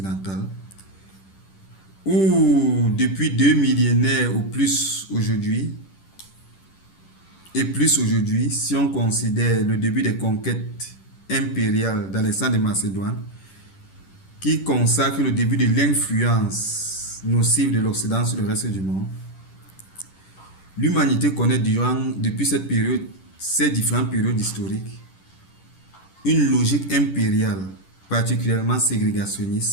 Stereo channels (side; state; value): right; late; 10 ms